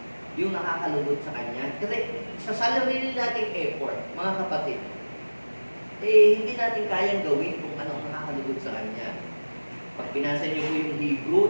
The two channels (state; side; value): inverted; both; correlation -1.00